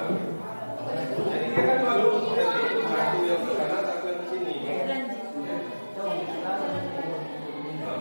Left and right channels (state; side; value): inverted; both; correlation -1.00